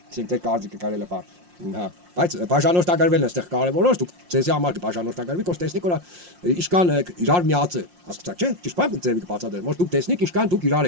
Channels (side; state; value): left; late; 5.6 ms